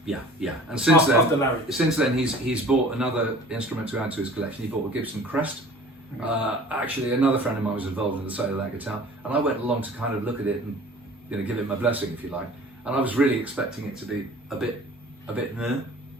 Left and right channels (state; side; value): normal; both; correlation 0.46